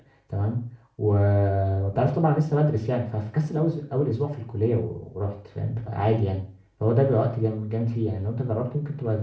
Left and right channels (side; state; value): both; identical; correlation 1.00